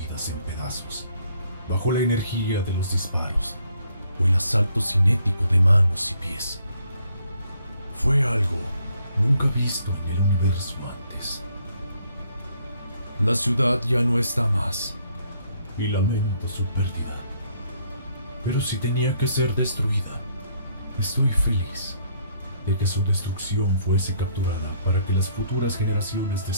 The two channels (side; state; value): both; inverted; correlation -0.68